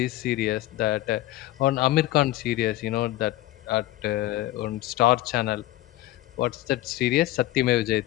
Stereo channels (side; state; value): right; quieter; 15.9 dB